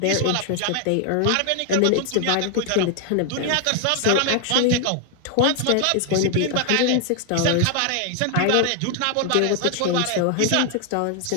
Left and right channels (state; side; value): different; both; correlation 0.00